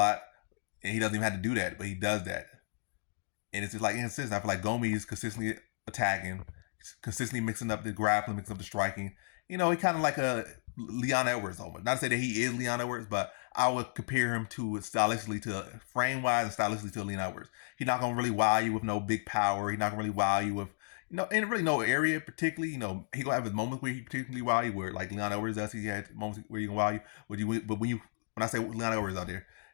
and he doesn't even have to do that, but he does that, and it's just like inconsistent. I feel like Gomis is consistently attacking, consistently mixing up the grappling, mixing up the striking. He kind of like a Leon Edwards almost. Not to say that he is Leon Edwards, but I would compare him to stylistically to frame wise and stylistically to Leon Edwards. He's not gonna really wow you with no big power. He's not gonna really wow you with in really no area particularly. He gonna have his moments where he particularly wow you, where like Leon Edwards does. He had moments where he can wow you. But when I say Leon Edwards out there,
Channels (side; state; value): right; silent; digital silence